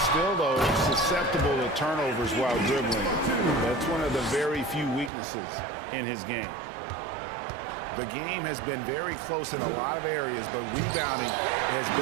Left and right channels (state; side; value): drops out; left; at 5.1 s